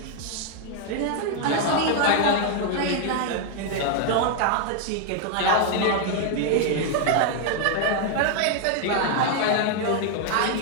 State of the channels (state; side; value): different; both; correlation 0.00